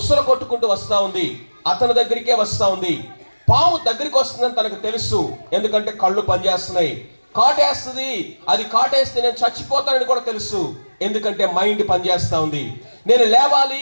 కొట్టుకుంటూ వస్తా ఉంది, అతని దగ్గరికే వస్తా ఉంది. పాము దగ్గరికి వస్తుందని తనకు తెలుసు, ఎందుకంటే కళ్ళు పనిచేస్తున్నాయి. కాటేస్తుంది, అది కాటేస్తే నేను చచ్చిపోతానని కూడా తెలుసు, ఎందుకంటే మైండ్ పనిచేస్తా ఉంది. నేను లేవాలి,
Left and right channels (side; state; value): both; inverted; correlation -1.00